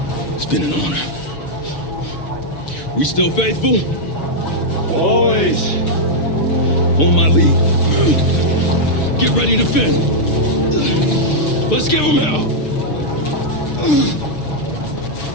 It's been an honor. We still faithful? Always. On my lead. Get ready to fend. Let's give them hell.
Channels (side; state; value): right; late; 6.6 ms